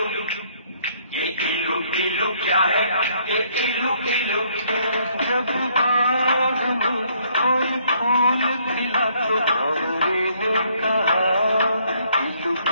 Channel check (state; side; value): inverted; both; correlation -0.66